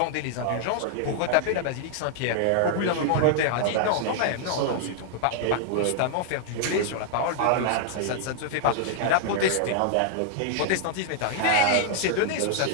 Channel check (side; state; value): both; different; correlation -0.01